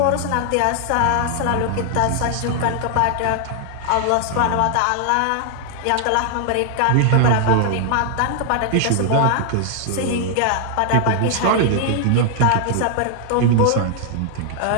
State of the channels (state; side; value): different; both; correlation 0.00